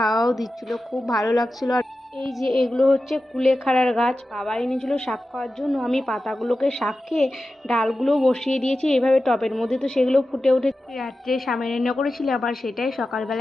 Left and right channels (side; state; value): both; normal; correlation 0.93